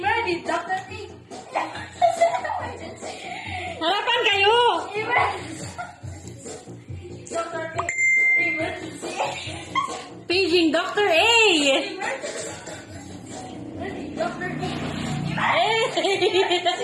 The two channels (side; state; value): both; identical; correlation 1.00